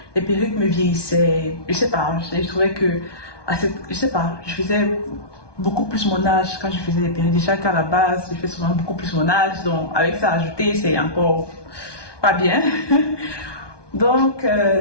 les perruques me vieillissaient. Je sais pas, je trouvais que je sais pas, je faisais beaucoup plus mon âge quand je faisais des perruques. Déjà qu'à la base, je fais souvent beaucoup plus mon âge, donc avec ça ajouté, c'est encore pas bien. Donc,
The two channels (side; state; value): right; late; 1.2 ms